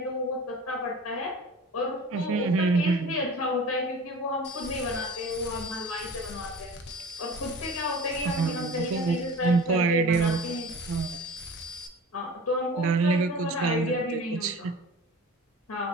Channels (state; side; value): normal; both; correlation 0.39